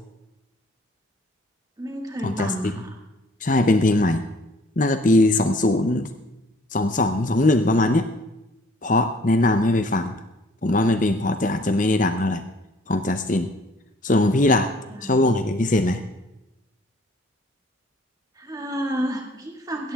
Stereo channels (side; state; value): both; normal; correlation 0.57